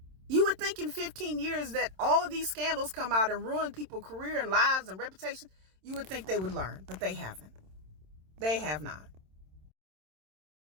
You would think in 15 years that all of these scandals come out and ruin people's career and lives and reputation. You would think they would learn, but they haven't. They have not.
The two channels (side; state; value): left; late; 27 ms